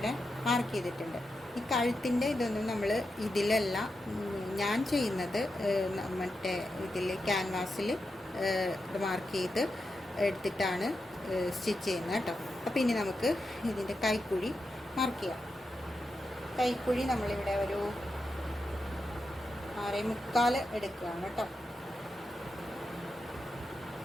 മാർക്ക് ചെയ്തിട്ടുണ്ട്. ഈ കഴുത്തിൻ്റെ ഇതൊന്നും നമ്മൾ ഇതിലല്ല ഞാൻ ചെയ്യുന്നത്, മറ്റേ ഇതിൽ ക്യാൻവാസിൽ ഇത് മാർക്ക് ചെയ്ത് എടുത്തിട്ടാണ് സ്റ്റിച്ച് ചെയ്യുന്നത് കേട്ടോ. അപ്പോൾ ഇനി നമുക്ക് ഇതിൻ്റെ കൈക്കുഴി മാർക്ക് ചെയ്യാം. കൈക്കുഴി നമ്മളിവിടെ ഒരു 6.25 എടുക്കുകയാണ് കേട്ടോ.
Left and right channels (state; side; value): normal; both; correlation 0.88